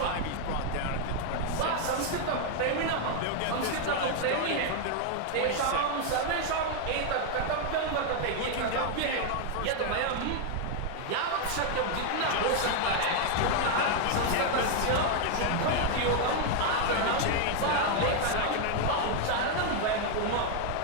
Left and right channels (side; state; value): both; different; correlation 0.00